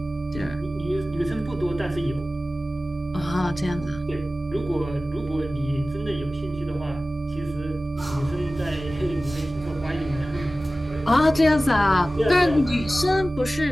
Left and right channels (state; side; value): normal; both; correlation 0.96